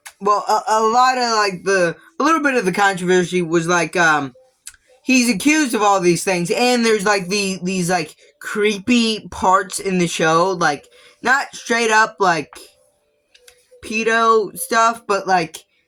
well, a lot of, like, a little bit of the controversy was, like, he's accused of all these things, and there's, like, these, like, creepy parts in the show, like, not straight up, like, pedo stuff, but, like,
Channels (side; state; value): both; identical; correlation 1.00